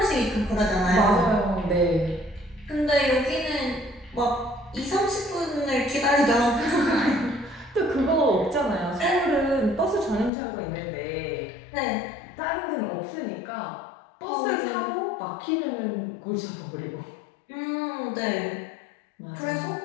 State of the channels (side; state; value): right; drops out; at 10.3 s